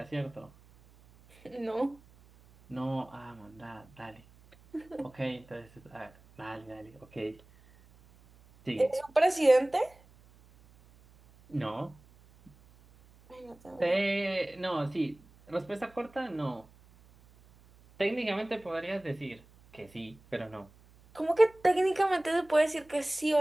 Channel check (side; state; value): right; noise; hum, 27 dB below the sound